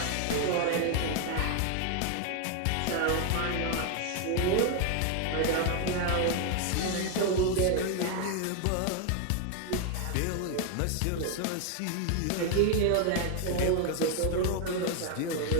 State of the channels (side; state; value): both; different; correlation 0.00